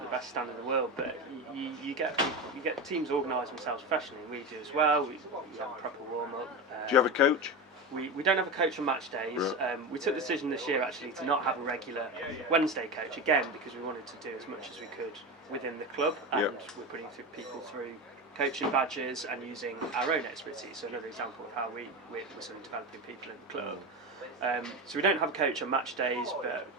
the best standard in the world, but you get teams organise themselves professionally, and we do as well. We have a proper warm-up. Do you have a coach? We don't have a coach on match days. Right. We took the decision this year actually to not have a regular Wednesday coach, again because we wanted to do as much as we could within the club, and we're putting people through coaching badges and using our own expertise. So another example of how we're sort of developing people in the club. So we don't have a coach on match days, but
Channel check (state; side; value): normal; both; correlation 0.21